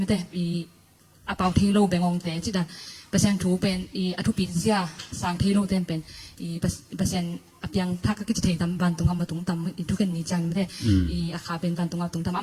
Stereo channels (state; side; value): identical; both; correlation 1.00